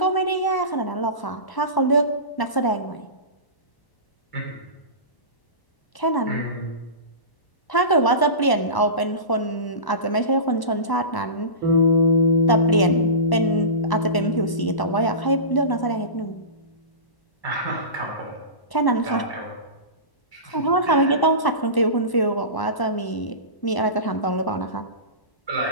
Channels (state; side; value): late; right; 1.0 ms